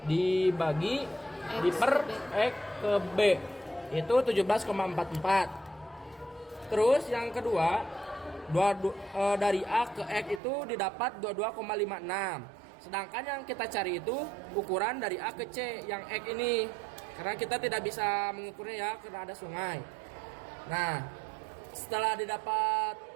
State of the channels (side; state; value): left; drops out; at 10.4 s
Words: dibagi di per X ke B itu 17,44. Terus yang kedua dari A ke X itu didapat 22,56. Sedangkan yang kita cari itu ukuran dari A ke C yang X ini, karena kita tidak bisa mengukurnya ya karena ada sungai. Nah, setelah didapat